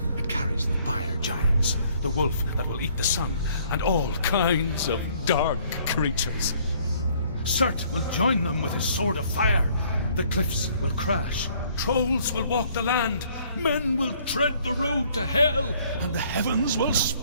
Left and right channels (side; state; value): both; inverted; correlation -0.61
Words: It carries the fire giants, the wolf that will eat the sun, and all kinds of dark creatures. Surt will join them with his sword of fire. The cliffs will crash, trolls will walk the land, men will tread the road to hell, and the heavens will